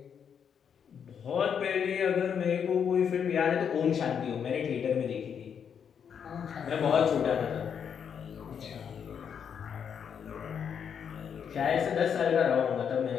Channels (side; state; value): right; quieter; 7.6 dB